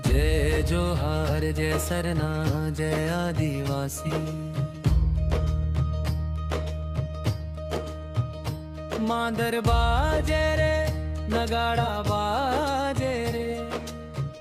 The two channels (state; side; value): identical; both; correlation 1.00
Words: जय जोहार जय सरना जय आदिवासी। मांदर बाजे रे नगाड़ा बाजे रे,